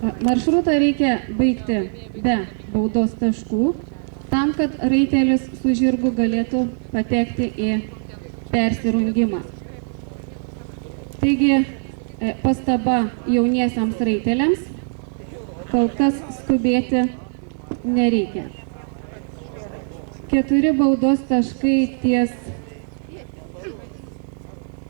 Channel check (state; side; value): silent; left; digital silence